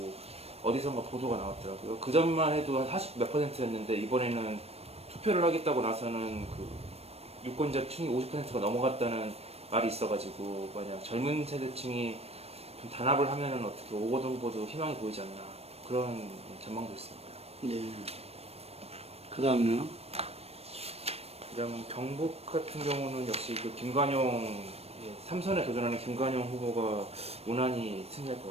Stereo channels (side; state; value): left; late; 0.29 ms